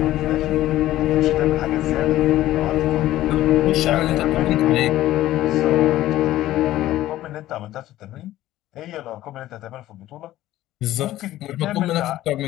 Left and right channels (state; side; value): quieter; right; 14.7 dB